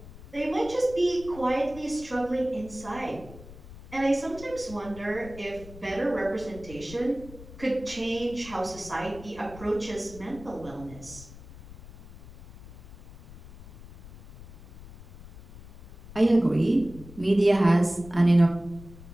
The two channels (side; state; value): left; noise; rumble, 17 dB below the sound